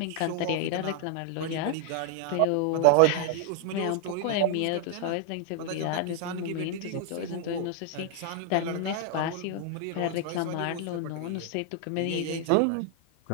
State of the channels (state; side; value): different; both; correlation 0.00